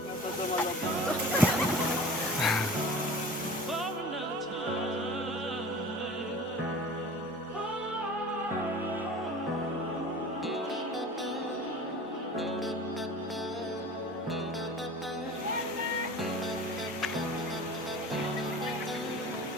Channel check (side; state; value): both; normal; correlation 0.39